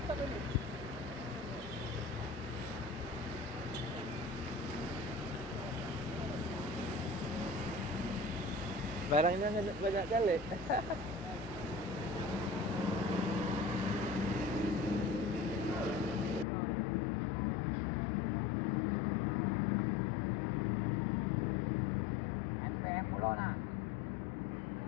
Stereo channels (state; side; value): drops out; right; at 16.4 s